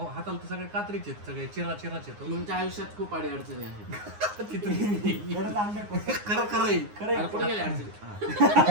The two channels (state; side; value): late; left; 9.6 ms